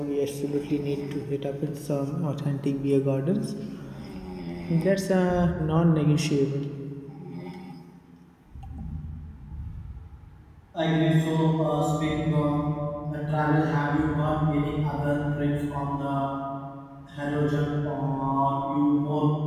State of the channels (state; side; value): identical; both; correlation 1.00